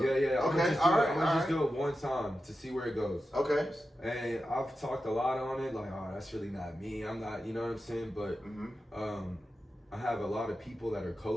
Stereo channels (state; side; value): normal; both; correlation 0.91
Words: Yeah. Okay. I'm gonna just do it one time to see where it goes. Okay. And I've talked a lot on it, like, oh, that's really not me. I'm not, you know what I'm saying? But I have a lot of people that are